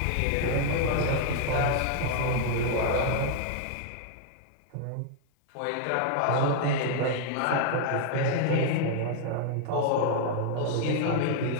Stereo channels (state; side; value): different; both; correlation -0.01